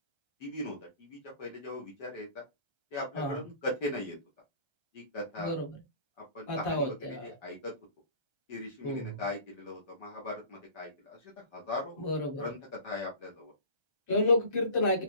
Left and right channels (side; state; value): left; late; 1.3 ms